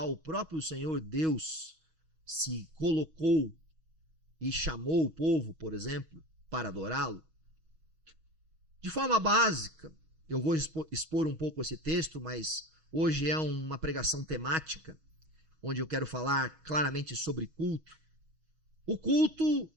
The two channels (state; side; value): late; left; 6.3 ms